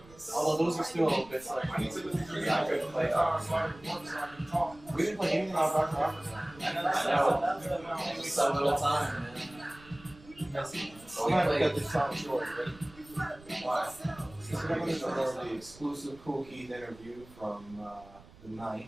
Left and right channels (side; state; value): right; noise; rumble, 22 dB below the sound